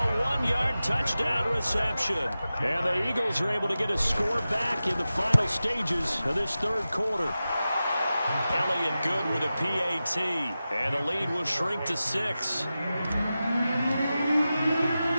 1-yard touchdown reception. And the Eagles are able to get a score back in the final stages of this 3rd quarter. Elliott good with a PAT, and the lead will shrink to 6.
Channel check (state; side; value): inverted; both; correlation -0.94